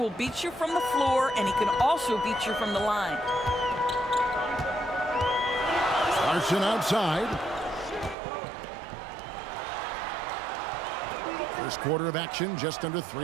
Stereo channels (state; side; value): drops out; left; at 8.2 s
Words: beat you from the floor, and he can also beat you from the line. Larson outside. First quarter of action, just under